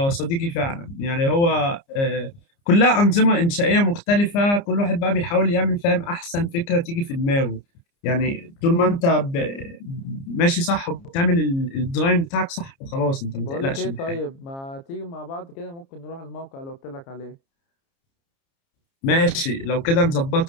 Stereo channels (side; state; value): right; late; 29 ms